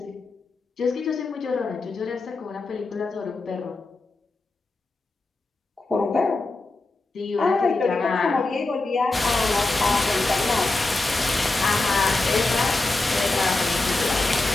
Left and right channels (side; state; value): right; quieter; 3.2 dB